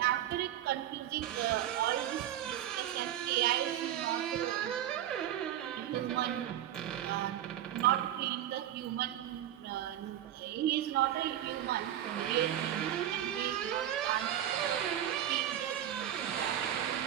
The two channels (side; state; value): left; quieter; 11.6 dB